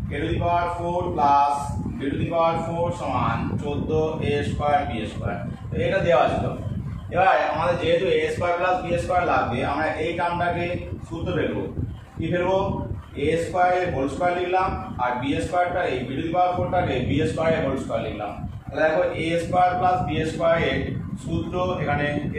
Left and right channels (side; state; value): both; identical; correlation 1.00